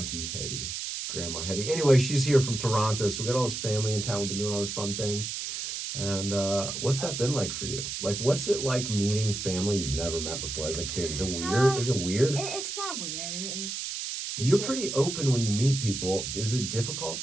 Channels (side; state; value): right; noise; hiss, 5 dB below the sound